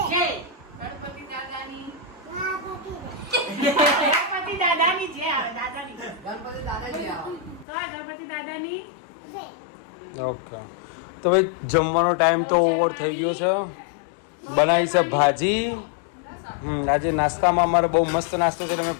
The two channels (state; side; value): drops out; right; at 7.7 s